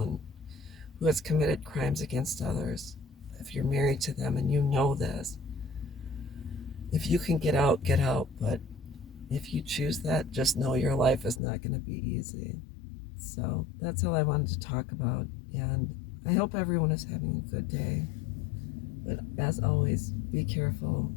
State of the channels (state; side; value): drops out; right; at 11.4 s